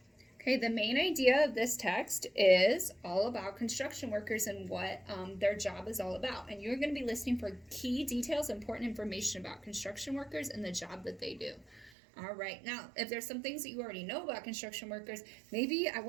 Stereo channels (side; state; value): left; drops out; at 11.9 s